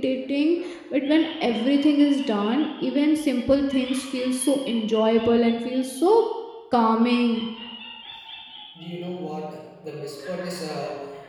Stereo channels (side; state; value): both; identical; correlation 1.00